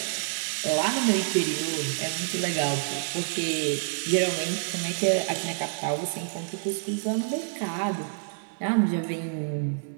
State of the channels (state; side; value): silent; left; digital silence